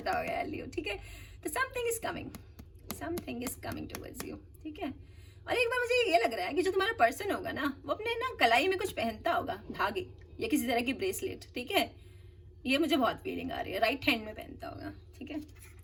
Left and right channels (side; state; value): both; identical; correlation 1.00